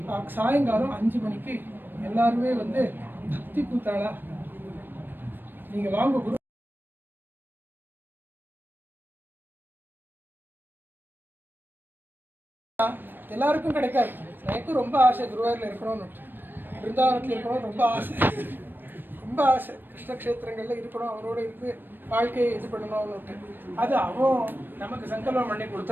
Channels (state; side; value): late; left; 0.094 ms